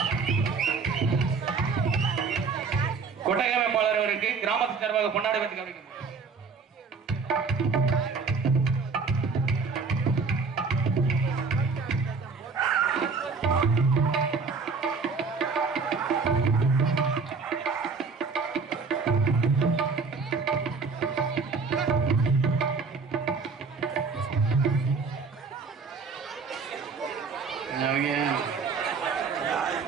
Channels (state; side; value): quieter; left; 4.9 dB